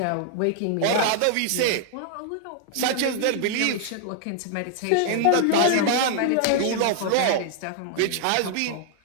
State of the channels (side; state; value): both; different; correlation 0.00